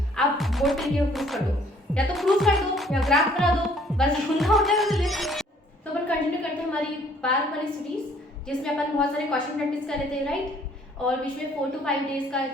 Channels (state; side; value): normal; both; correlation 0.60